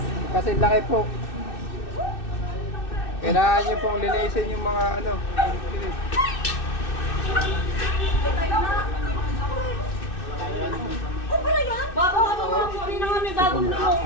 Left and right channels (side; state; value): right; late; 2.6 ms